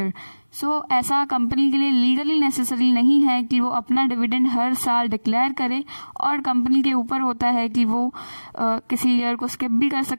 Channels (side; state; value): both; inverted; correlation -1.00